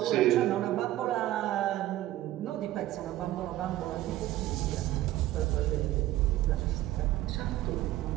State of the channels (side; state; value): left; quieter; 14.9 dB